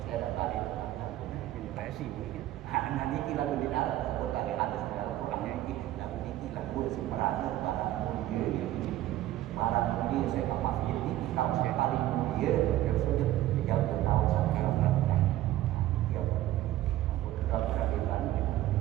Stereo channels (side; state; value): left; quieter; 14.5 dB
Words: saya dah balik ini presi anak ini lalu di darat sebut ada segala orangnya ini lalu ini lalu sebenarnya barang mulia saya ke masjid ini kau paling mulia tersebut jauh tahu sampai orang dia berkeadilan